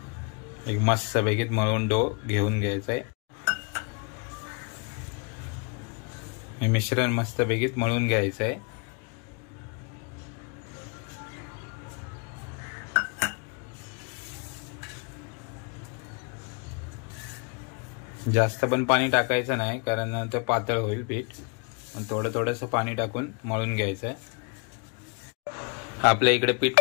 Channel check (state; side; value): quieter; right; 36.6 dB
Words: एक मस्त पैकी मळून डो घेऊन घ्यायचा आहे। हे मिश्रण मस्त पैकी मळून घ्यायचं आहे। जास्त पण पाणी टाकायचं नाही, कारण ते पातळ होईल पीठ। थोडंसं पाणी टाकून मळून घ्यायचं आहे। आपल्या इकडे